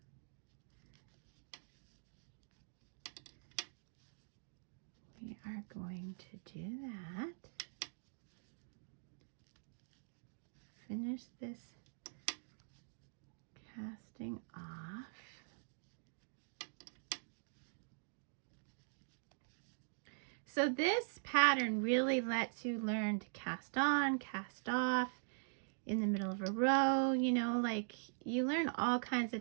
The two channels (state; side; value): silent; left; digital silence